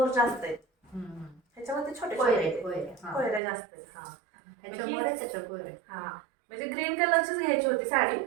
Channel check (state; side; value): drops out; left; at 3.4 s